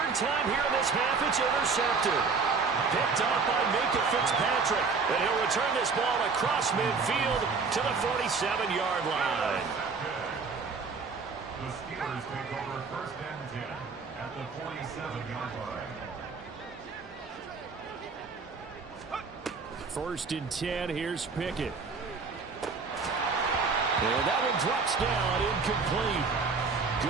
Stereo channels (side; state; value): left; quieter; 4.7 dB